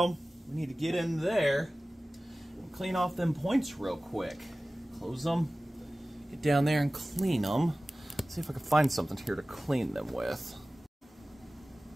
we need to get in there and clean off them points real quick. Close them, get down there and clean them. See if I can find something here to clean them with.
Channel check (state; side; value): normal; both; correlation 0.97